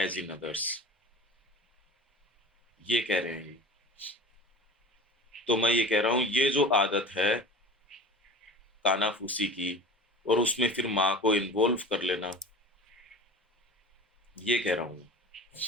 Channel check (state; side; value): normal; both; correlation 0.36